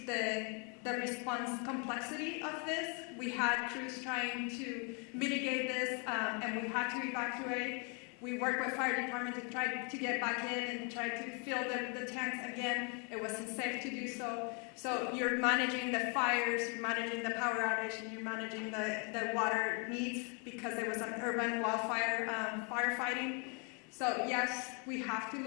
the response complexity of this. We had crews trying to mitigate this, and we had to evacuate. We worked with fire department to try to get back in and try to fill the tanks again. It wasn't safe to do so. So you're managing the fires, you're managing the power outage, and you're managing the water needs because there was an urban wildfire firefighting. So yes, we have to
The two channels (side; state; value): right; quieter; 36.4 dB